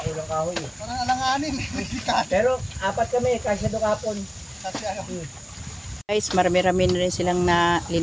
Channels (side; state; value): both; identical; correlation 1.00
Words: kulang kahoy eh. Parang alanganin. Pero 4 kami, kasya doon kahapon. Kasi ano. Guys, marami-rami na rin silang